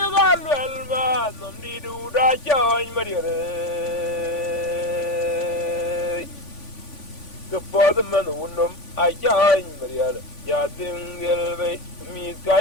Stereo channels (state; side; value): late; right; 3.5 ms